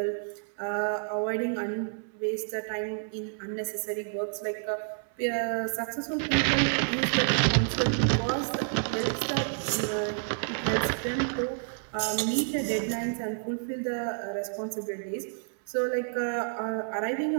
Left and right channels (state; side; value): silent; left; 58 dB below the other